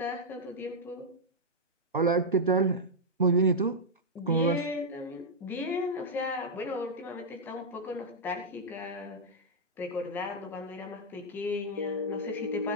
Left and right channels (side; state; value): both; normal; correlation -0.05